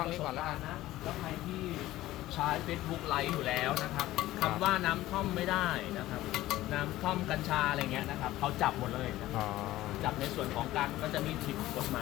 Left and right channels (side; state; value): right; quieter; 15.9 dB